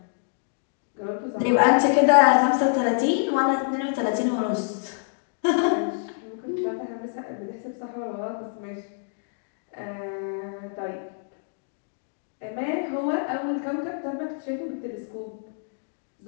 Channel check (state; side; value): silent; right; digital silence